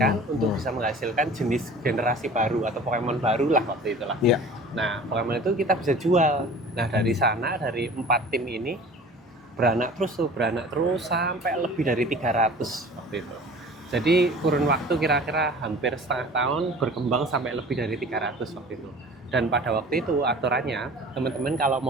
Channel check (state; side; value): normal; both; correlation 0.43